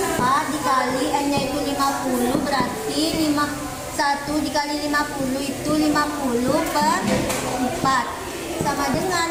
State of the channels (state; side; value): identical; both; correlation 1.00